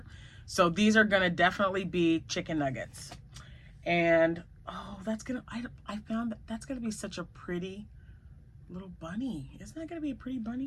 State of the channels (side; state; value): both; identical; correlation 1.00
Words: So these are going to definitely be chicken nuggets. And oh, I found that's going to be such a pretty little bunny. Isn't that going to be a pretty